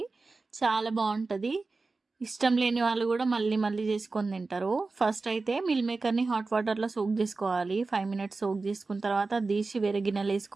చాలా బావుంటది. ఇష్టం లేని వాళ్ళు కూడా మళ్ళీ మళ్ళీ చేసుకొని తింటారు. ఫస్ట్ అయితే మిల్ మేకర్‌ని హాట్ వాటర్‌లో సోక్ చేసుకోవాలి. 5 మినిట్స్ సోక్ చేసుకున్న తర్వాత తీసి వేరే గిన్నెలో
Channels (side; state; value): left; quieter; 3.8 dB